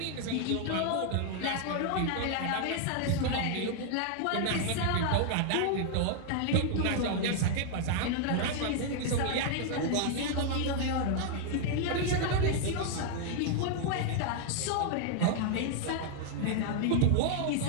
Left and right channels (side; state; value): both; different; correlation 0.00